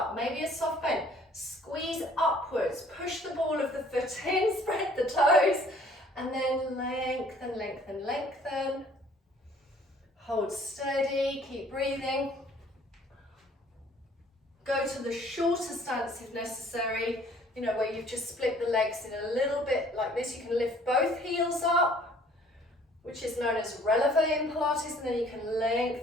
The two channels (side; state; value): both; normal; correlation 0.56